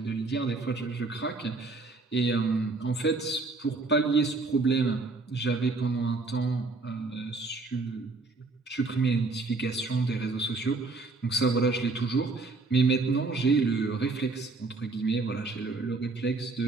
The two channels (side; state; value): left; quieter; 3.7 dB